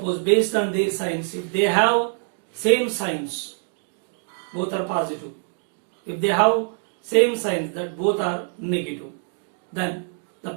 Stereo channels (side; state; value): left; silent; 59 dB below the other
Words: based on their signs, if they have same signs, both are positive. If they have same signs that both are negative, then the